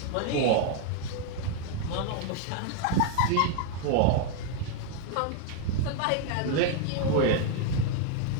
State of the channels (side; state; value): both; different; correlation 0.00